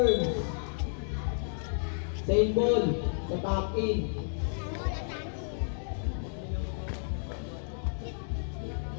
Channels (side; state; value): right; silent; digital silence